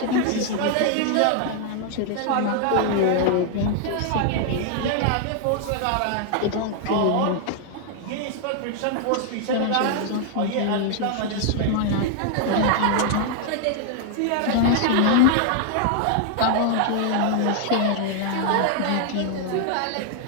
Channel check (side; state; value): both; different; correlation 0.00